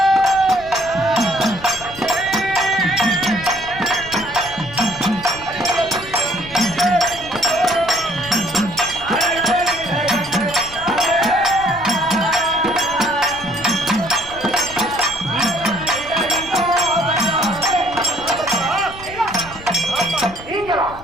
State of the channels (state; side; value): noise; left; rumble, 17 dB below the sound